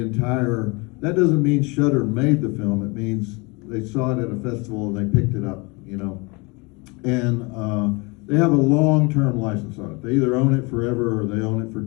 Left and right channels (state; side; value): quieter; right; 28.0 dB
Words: entire, that doesn't mean Shudder made the film, it means they saw it at a festival and they picked it up, And they have a long-term license on it. They either own it forever or they own it for